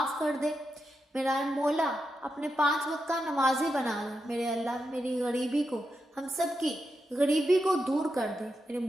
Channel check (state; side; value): normal; both; correlation 0.87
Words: کر دے، میرا مولا اپنے 5 وقت کا نمازی بنا دے، میرے اللہ میری غریبی کو، ہم سب کی غریبی کو دور کر دے، میرے